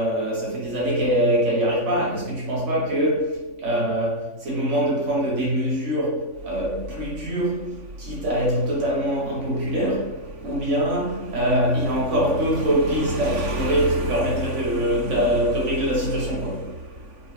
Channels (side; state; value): left; late; 3.5 ms